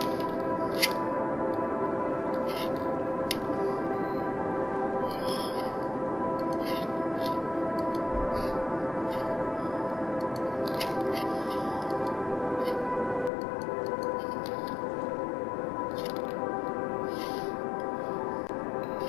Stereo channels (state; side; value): drops out; right; at 13.3 s